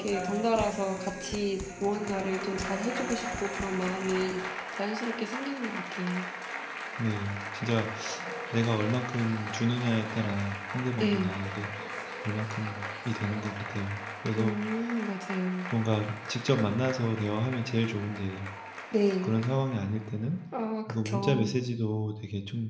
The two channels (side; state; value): both; identical; correlation 1.00